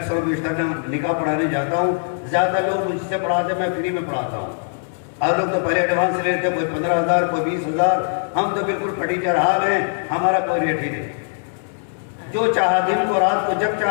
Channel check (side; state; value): right; silent; digital silence